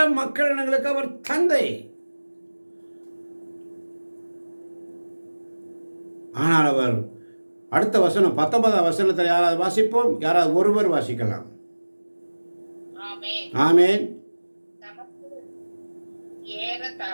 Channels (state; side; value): inverted; both; correlation -1.00